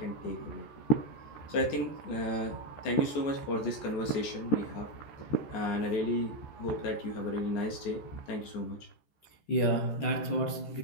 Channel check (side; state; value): right; late; 14 ms